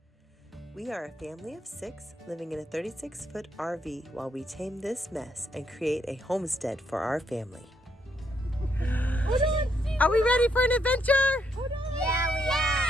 We are a family of 6 living in a 36-foot RV while we tame this mess and create a homestead for our family. Are we ready for an adventure? Yeah, we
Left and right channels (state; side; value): normal; both; correlation 0.76